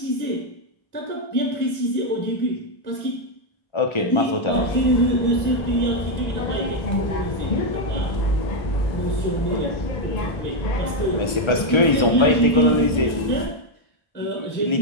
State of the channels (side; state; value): right; late; 1.3 ms